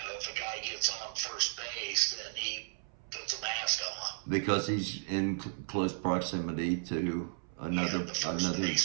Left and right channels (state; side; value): silent; left; 55 dB below the other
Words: a guy gets on first base, then he puts a mask on Because he's in close proximity to another the first